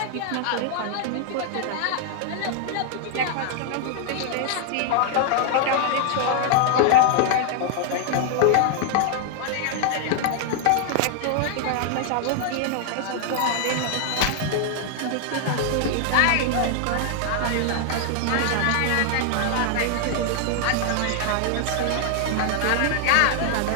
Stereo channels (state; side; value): different; both; correlation 0.00